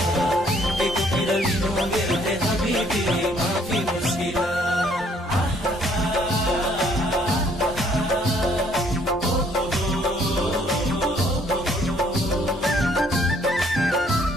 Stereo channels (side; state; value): both; normal; correlation 0.64